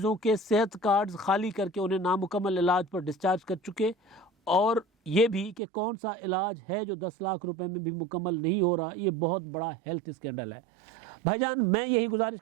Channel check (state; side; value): drops out; left; at 5.6 s